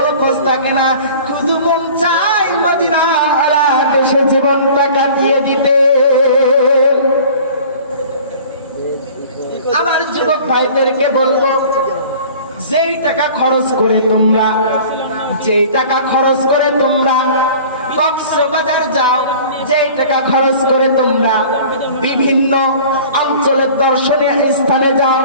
খোঁজ থাকে না শুধু মন চায় মদিনা ওয়ালা দেশে জীবনটা কাটিয়ে দিতে আমার যুবক ভাইদেরকে বলবো যেই টাকা খরচ করে তোমরা কক্সবাজার যাও যেই টাকা খরচ করে তোমরা বিভিন্ন অঞ্চলের দর্শনীয় স্থানে যাও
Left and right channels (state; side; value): inverted; both; correlation -0.45